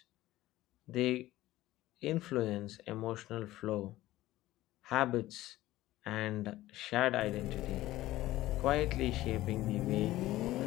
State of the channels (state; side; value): quieter; right; 16.1 dB